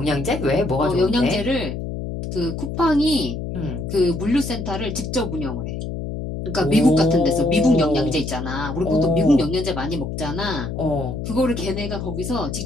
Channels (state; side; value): noise; left; hum, 5 dB below the sound